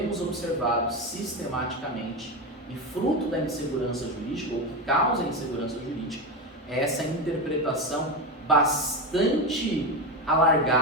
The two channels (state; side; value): normal; both; correlation 0.16